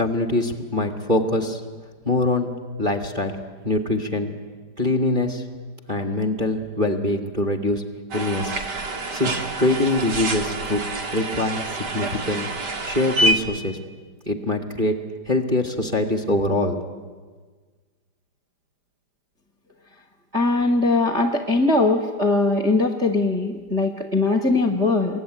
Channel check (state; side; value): late; left; 5.0 ms